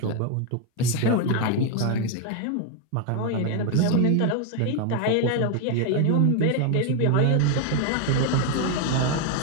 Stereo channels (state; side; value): different; both; correlation 0.01